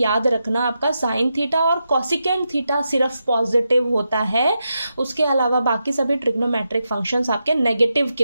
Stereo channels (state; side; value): inverted; both; correlation -0.86